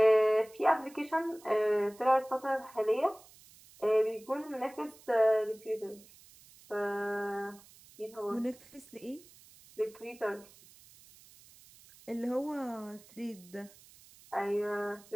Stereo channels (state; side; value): noise; right; hiss, 24 dB below the sound